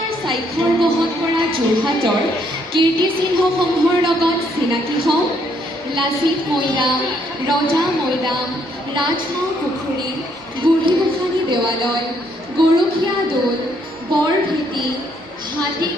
স্বাক্ষৰ বহন কৰা যোৰহাটৰ কীৰ্তিচিহ্নসমূহৰ লগত চিনাকি হওঁ। লাচিত মৈদাম, ৰজা মৈদাম, ৰাজমাও পুখুৰী, বুঢ়ীগোসানী দেৱালয়, গৰখীয়া দৌল, বৰভেটি,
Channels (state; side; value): normal; both; correlation 0.70